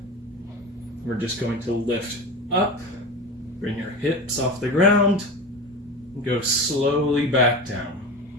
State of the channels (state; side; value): normal; both; correlation 0.27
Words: We're just going to lift up, bring your hips off the ground, and go slowly back down.